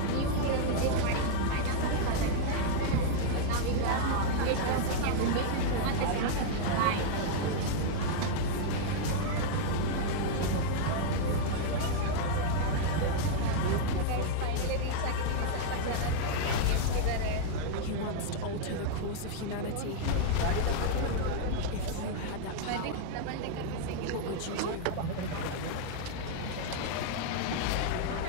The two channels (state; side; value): different; both; correlation -0.01